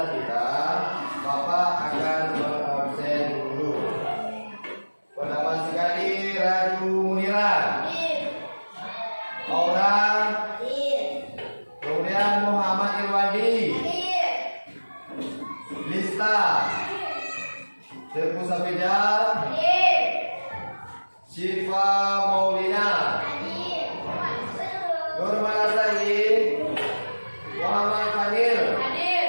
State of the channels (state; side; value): inverted; both; correlation -1.00